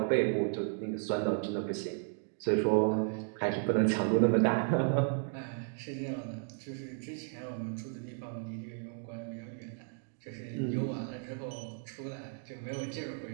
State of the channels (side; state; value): left; silent; 55 dB below the other